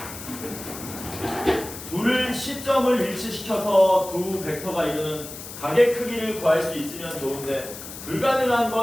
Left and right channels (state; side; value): noise; left; hiss, 12 dB below the sound